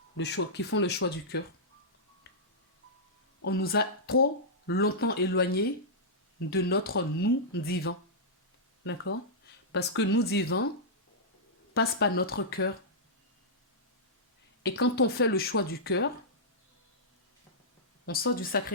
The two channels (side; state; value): both; normal; correlation -0.13